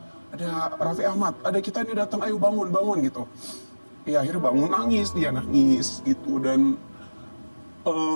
Raffi Ahmad, ada kita ini datang, ayo bangun gitu. Ya akhirnya bangun, dia nangis gitu. Dan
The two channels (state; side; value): inverted; both; correlation -1.00